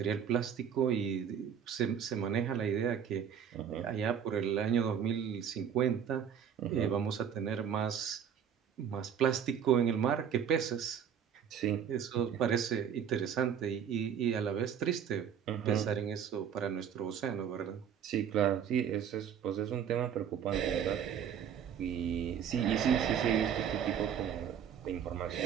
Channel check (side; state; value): left; quieter; 8.3 dB